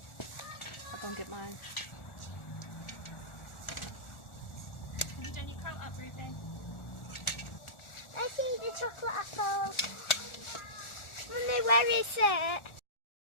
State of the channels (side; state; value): right; late; 1.4 ms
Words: I'll go and get mine. Have you done your coat up, Ruby? I see the chocolate apple. Mummy, where is it?